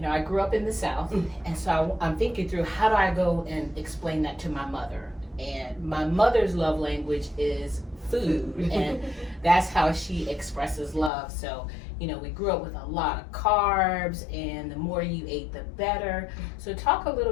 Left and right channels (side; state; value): right; drops out; at 11.1 s